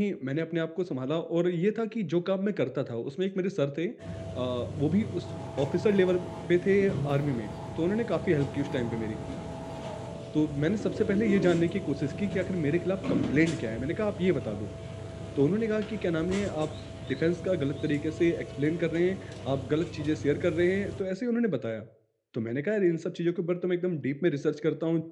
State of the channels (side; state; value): both; identical; correlation 1.00